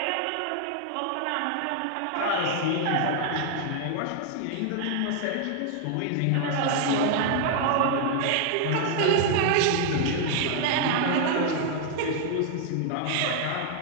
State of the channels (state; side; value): different; both; correlation 0.00